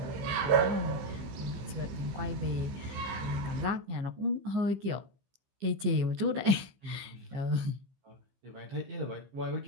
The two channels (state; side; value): late; left; 15 ms